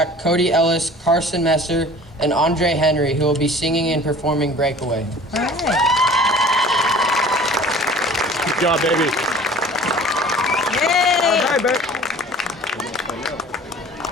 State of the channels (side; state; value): both; normal; correlation 0.46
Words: Cody Ellis, Carson Messer, and Andre Henry, who will be singing and performing Breakaway. All right. Good job, baby. Yay! All right, babe.